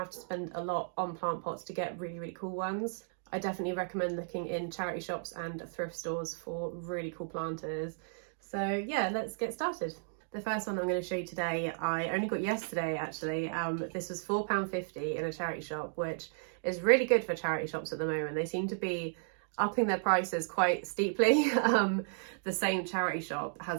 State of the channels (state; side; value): silent; left; digital silence